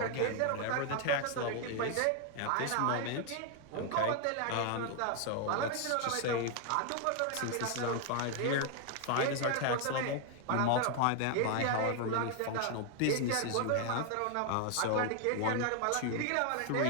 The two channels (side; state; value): both; different; correlation 0.00